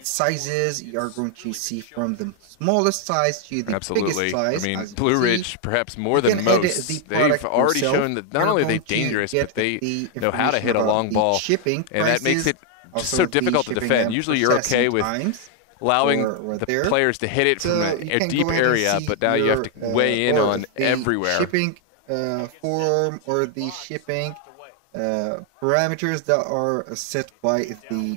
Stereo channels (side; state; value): both; different; correlation 0.01